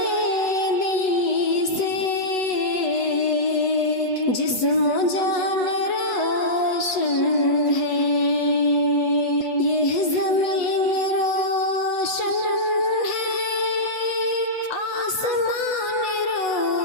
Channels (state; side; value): late; right; 8.0 ms